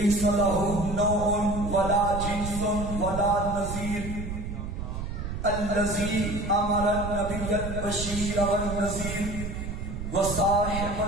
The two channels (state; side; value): noise; right; rumble, 6 dB below the sound